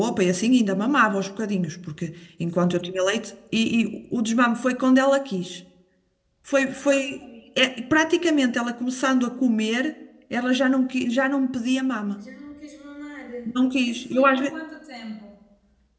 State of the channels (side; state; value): both; identical; correlation 1.00